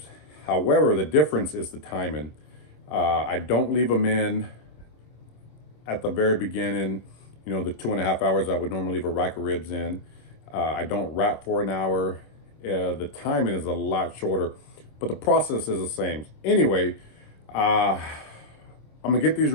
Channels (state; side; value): late; right; 26 ms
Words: However, the difference is the timing. I don't leave them in at the very beginning, the 2.5 hours I would normally leave a rack of ribs in. I don't wrap for an hour. The timing is a lot shorter, but the process is the same. Anyway, I'm gonna get these